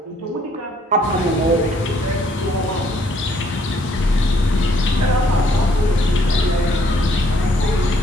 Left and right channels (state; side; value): normal; both; correlation 0.66